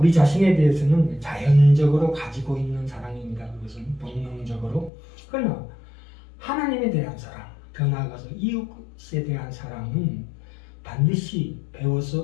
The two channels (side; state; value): right; drops out; at 4.9 s